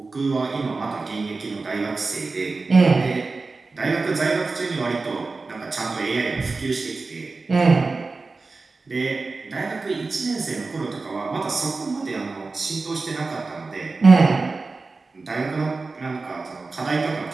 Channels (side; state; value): left; quieter; 3.9 dB